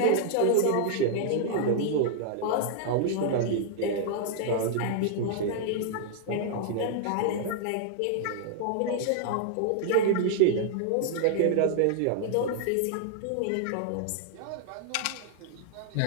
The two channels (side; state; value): both; different; correlation 0.00